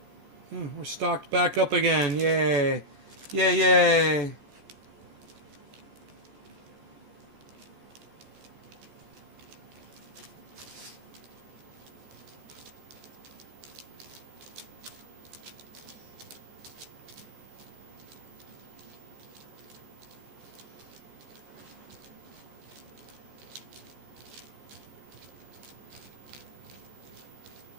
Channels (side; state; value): left; late; 14 ms